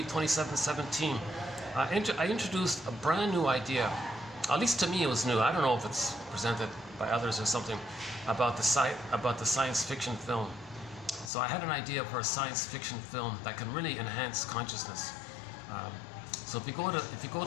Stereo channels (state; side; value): drops out; right; at 11.3 s